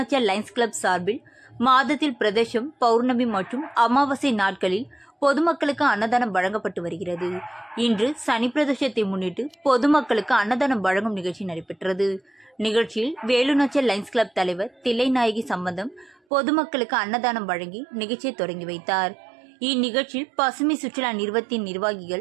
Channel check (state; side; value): drops out; left; at 16.2 s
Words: லைன்ஸ் கிளப் சார்பில் மாதத்தில் பிரதோஷம், பௌர்ணமி மற்றும் அமாவாசை நாட்களில் பொதுமக்களுக்கு அன்னதானம் வழங்கப்பட்டு வருகிறது. இன்று சனி பிரதோஷத்தை முன்னிட்டு பொதுமக்களுக்கு அன்னதானம் வழங்கும் நிகழ்ச்சி நடைபெற்றது. நிகழ்ச்சியில் வேலுநாச்சியார் லைன்ஸ் கிளப் தலைவர் தில்லைநாயகி சம்பந்தம் பொதுமக்களுக்கு அன்னதானம் வழங்கி நிகழ்ச்சியை தொடங்கி வைத்தார். இந்நிகழ்ச்சியில் பசுமை சுற்றுலா நிறுவனத்தின்